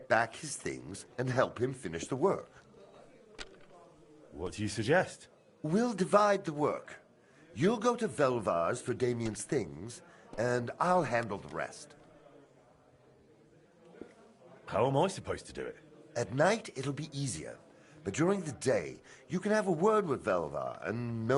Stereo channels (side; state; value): both; identical; correlation 1.00